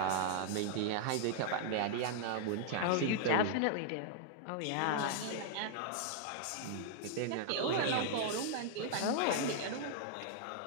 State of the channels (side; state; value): both; different; correlation -0.01